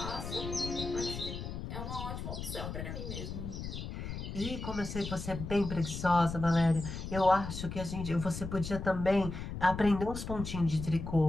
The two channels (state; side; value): noise; left; rumble, 7 dB below the sound